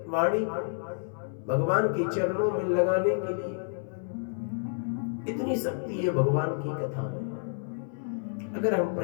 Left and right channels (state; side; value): silent; right; 58 dB below the other